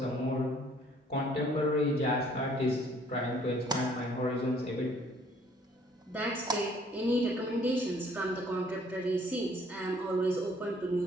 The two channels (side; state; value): both; normal; correlation 0.60